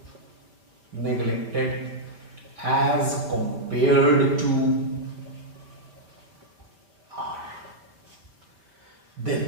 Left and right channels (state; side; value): late; left; 5.5 ms